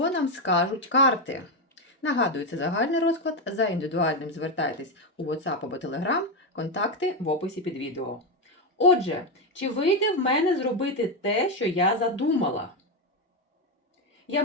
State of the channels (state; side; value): normal; both; correlation 0.08